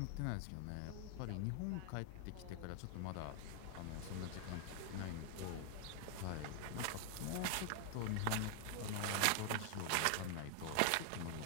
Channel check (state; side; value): different; both; correlation 0.00